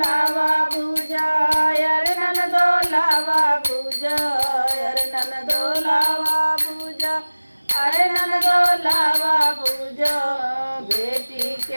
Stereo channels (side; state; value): both; inverted; correlation -1.00